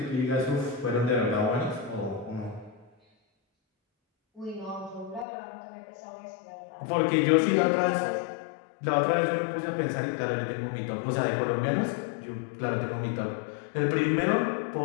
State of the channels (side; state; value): right; drops out; at 5.2 s